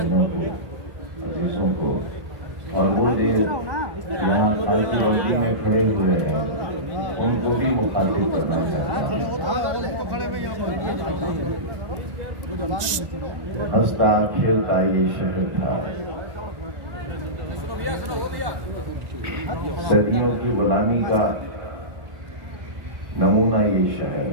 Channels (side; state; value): left; late; 1.9 ms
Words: को, अजीजों को, और वो देव यहाँ खालसी मंडी में खड़े हुए हैं, उनको भी मुखातिब करना चाहता हूँ। हंसता खेलता ये शहर था, सदियों की गुलामी का नमूना ये शहर।